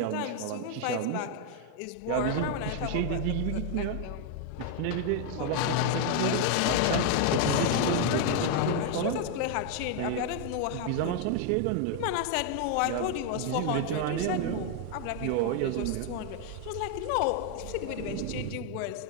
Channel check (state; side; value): different; both; correlation 0.00